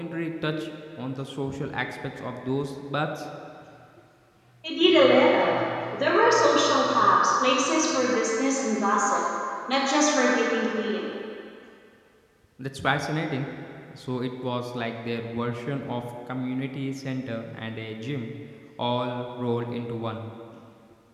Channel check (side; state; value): both; identical; correlation 1.00